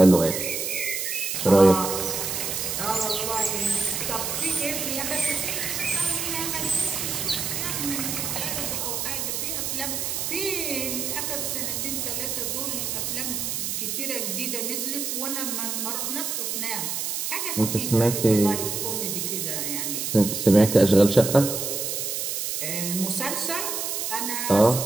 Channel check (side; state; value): right; noise; hiss, 2 dB below the sound